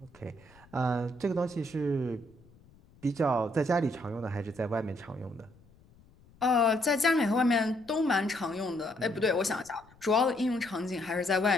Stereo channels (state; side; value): noise; left; rumble, 28 dB below the sound